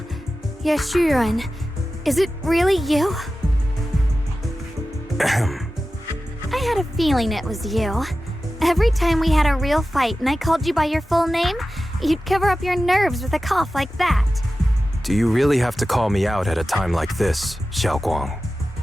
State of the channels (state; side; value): normal; both; correlation 0.94